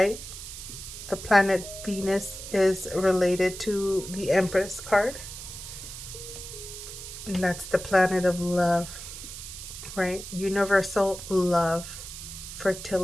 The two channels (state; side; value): noise; right; hiss, 11 dB below the sound